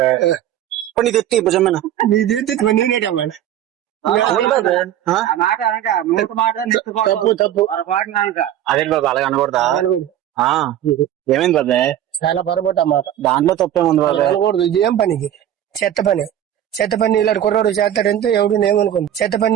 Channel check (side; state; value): left; quieter; 11.4 dB